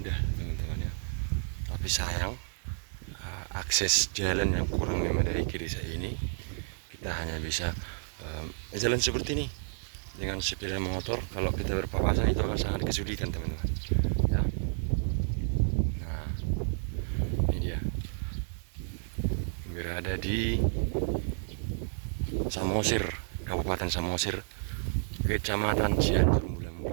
teman-teman ya. Tapi sayang, akses jalan yang kurang memadai ke desa ini. Kita hanya bisa jalan seperti ini dengan sepeda motor. Kalau kita berpapasan itu akan sangat kesulitan, teman-teman ya. Nah, ini dia, berada di Samosir, Kabupaten Samosir, Kecamatan Cianjur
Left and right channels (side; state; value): left; silent; digital silence